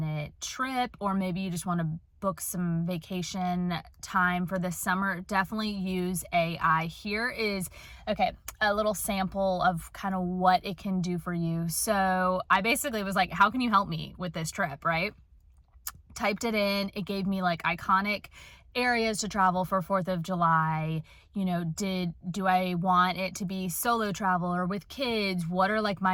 trip, or maybe you just want to book some vacation time for this summer, definitely use AI. Here is, a little sample of kind of what it can do for you. So I basically was like, how can you help me with this trip, right? Typed it in. It gave me like iconic areas to travel for 4th of July. Do I want it to be solo travel or with kids? What are like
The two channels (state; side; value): identical; both; correlation 1.00